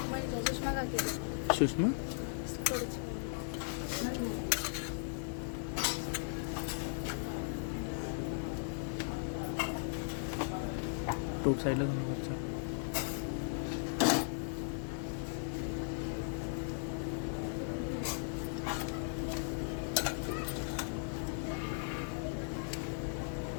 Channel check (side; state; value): right; silent; digital silence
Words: सुषमा टोप साईडला जाणं वरचा.